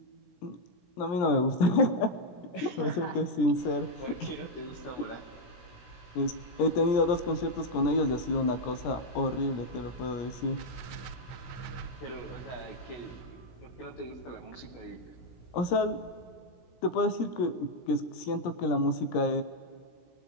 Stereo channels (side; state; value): right; late; 17 ms